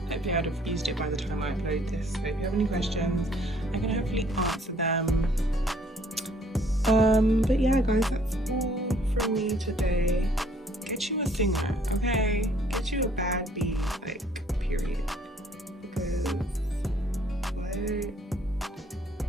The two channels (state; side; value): normal; both; correlation 0.61